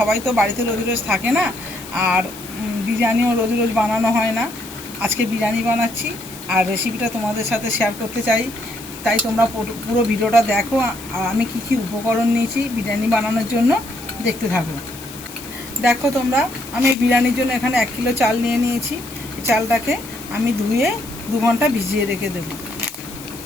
তো বাড়িতে রোজ রোজ থাকে না, আর বিরিয়ানিও রোজ রোজ বানানো হয় না। আজকে বিরিয়ানি বানাচ্ছি আর রেসিপিটা তোমাদের সাথে শেয়ার করতে চাই। তাই তোমরা পুরো ভিডিওটা দেখো, আর আমি কী উপকরণ নিয়েছি বিরিয়ানি বানানোর জন্য দেখতে থাকো। দেখো তোমরা, আমি বিরিয়ানির জন্য এখানে 1 কিলো চাল নিয়ে নিয়েছি। এই চালটাকে আমি ধুয়ে 2 ঘন্টা ভিজিয়ে রেখে দেব।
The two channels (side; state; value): left; noise; hiss, 16 dB below the sound